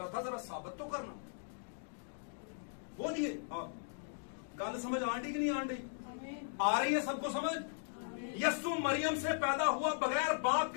था, जरा साबित तो करना। बोलिए, हाँ, गल समझ आंटी कि नहीं आंटी, आ रही है सबको समझ। यस्सु मरियम से पैदा हुआ बगैर बाप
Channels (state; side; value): silent; right; digital silence